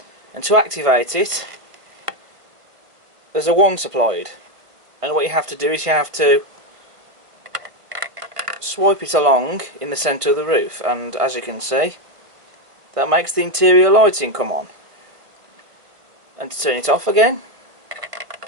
and to activate it, there's a wand supplied, and what you have to do is you have to swipe it along in the centre of the roof, and as you can see, that makes the interior lighting come on. And to turn it off again,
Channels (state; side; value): late; left; 1.5 ms